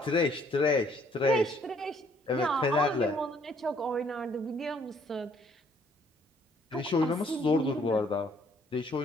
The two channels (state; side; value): normal; both; correlation 0.64